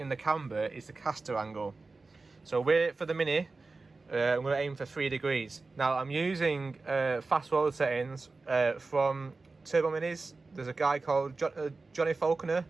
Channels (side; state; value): left; quieter; 3.7 dB